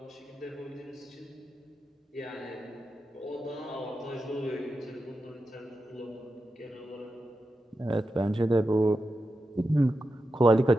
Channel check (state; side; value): normal; both; correlation 0.90